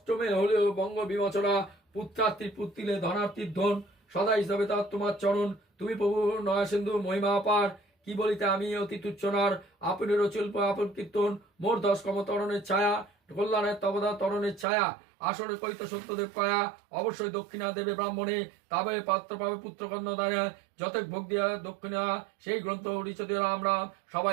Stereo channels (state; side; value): drops out; left; at 14.7 s